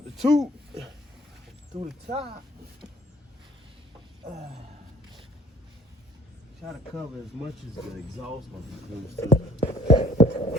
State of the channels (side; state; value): both; normal; correlation 0.55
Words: the tube through the top. Try to cover as much as the exhaust of the goes through.